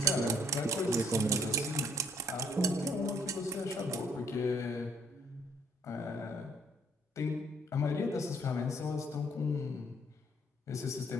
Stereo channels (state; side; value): normal; both; correlation 0.64